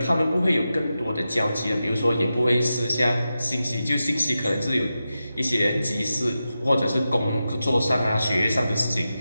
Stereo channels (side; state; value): both; inverted; correlation -0.91